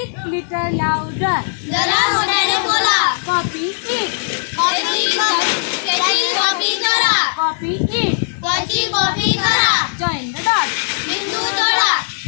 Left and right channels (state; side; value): silent; right; digital silence